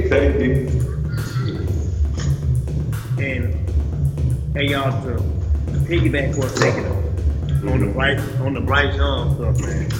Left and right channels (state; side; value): identical; both; correlation 1.00